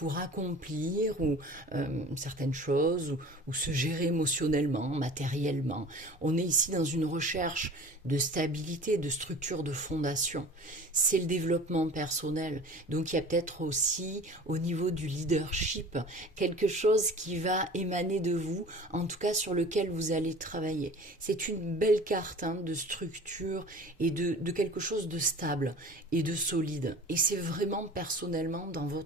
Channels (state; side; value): normal; both; correlation 0.41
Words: accomplir certaines choses ou se gérer émotionnellement, matériellement. On est ici dans une recherche de stabilité, de structure, de fondation. C'est le développement personnel. Donc il y a peut-être aussi au niveau du leadership quelque chose qui va émaner de vous, en tout cas sur lequel vous allez travailler. C'est une belle carte de structure et de quelque chose de stable et de solide. Et c'est vraiment personnellement dans